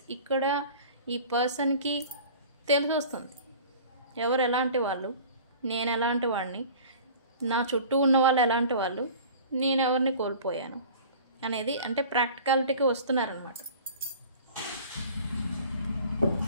ఇక్కడ ఈ పర్సన్కి తెలిసి వస్తుంది ఎవరు ఎలాంటి వాళ్ళు, నేను ఎలాంటి వాడిని, నా చుట్టూ ఉన్న వాళ్ళు ఎలాంటి వాళ్ళు, నేను ఎవరిని కోల్పోయాను అనేది. అంటే ప్రాక్టికాలిటీకి వస్తున్నారనమాట.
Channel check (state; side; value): inverted; both; correlation -0.43